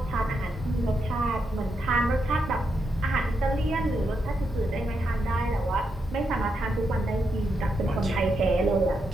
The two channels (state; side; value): normal; both; correlation 0.82